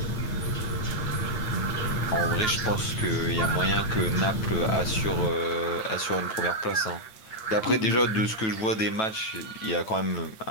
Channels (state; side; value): late; right; 9.2 ms